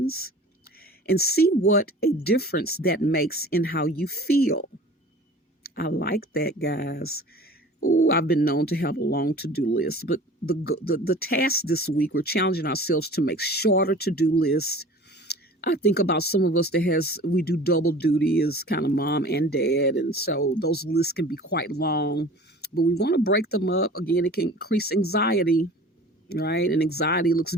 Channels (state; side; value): normal; both; correlation 0.43